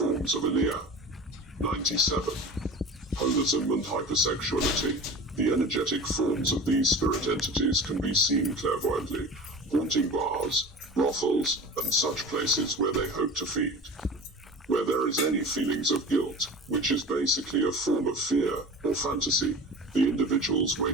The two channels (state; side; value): normal; both; correlation 0.35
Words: of Elia. 97. Holism and hypersexuality. The energetic forms of these spirit entities can be seen clairvoyantly, haunting bars, brothels, and such places where they hope to feed. Where there is any feelings of guilt, which is basically a form of fear or fantasy, the individual's Wei